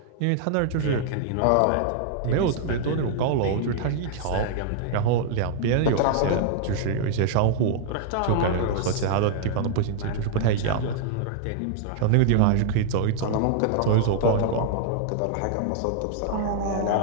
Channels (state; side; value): different; both; correlation -0.01